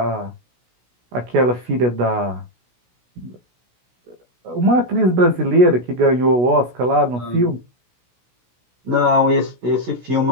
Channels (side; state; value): left; late; 16 ms